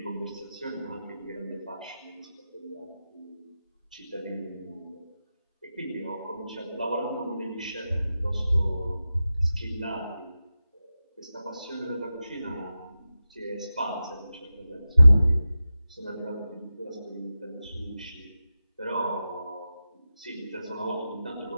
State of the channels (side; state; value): both; inverted; correlation -0.93